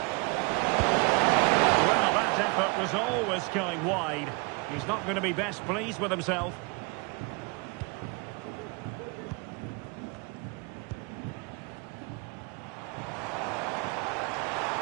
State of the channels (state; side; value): quieter; left; 29.9 dB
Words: Well, that effort was always going wide. He's not going to be best pleased with himself.